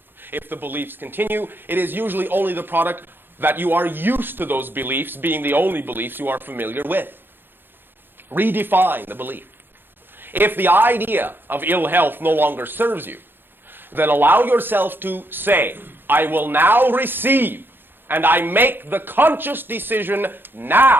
If the beliefs continue, it is usually only the product that you are used to those beliefs being the only beliefs you are familiar with. Redefine the belief. If the idea of ill health no longer serves you, then allow yourself to say, I will now receive, and I make the conscious decision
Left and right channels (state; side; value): late; left; 0.099 ms